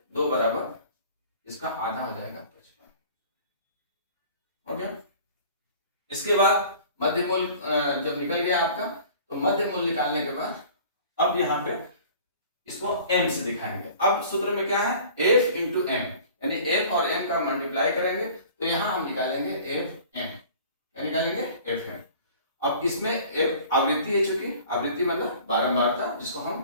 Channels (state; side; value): inverted; both; correlation -0.46